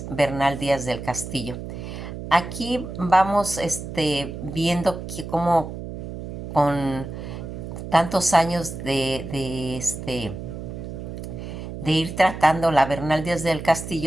Bernal Díaz del Castillo. Aquí vamos viendo que como con tantos años de ir tratando la Bernal Díaz del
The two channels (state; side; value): noise; right; hum, 9 dB below the sound